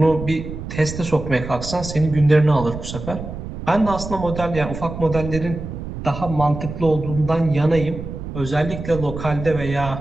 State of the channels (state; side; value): noise; right; rumble, 9 dB below the sound